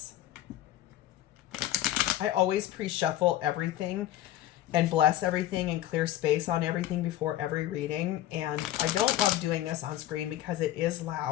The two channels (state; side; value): quieter; right; 13.4 dB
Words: I always pre-shuffle everything and bless everything and clear space on everything before every reading, and I don't love doing this on screen because it is